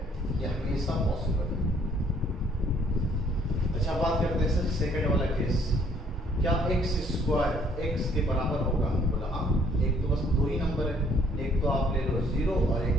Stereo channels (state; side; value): normal; both; correlation 0.63